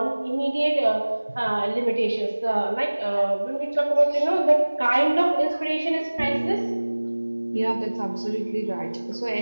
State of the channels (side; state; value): both; inverted; correlation -1.00